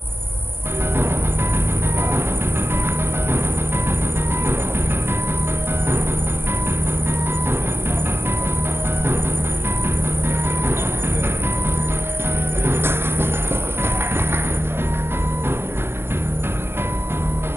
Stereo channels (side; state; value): left; late; 0.11 ms